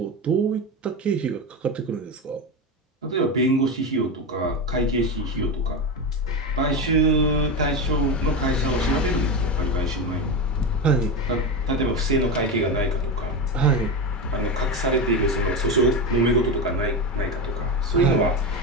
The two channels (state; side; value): normal; both; correlation 0.17